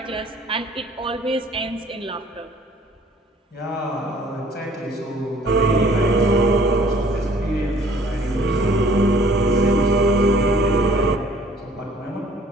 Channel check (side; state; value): both; normal; correlation 0.56